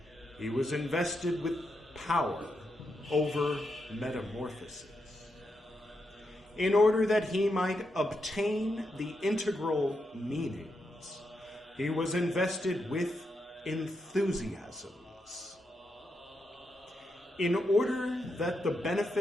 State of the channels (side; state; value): both; normal; correlation 0.84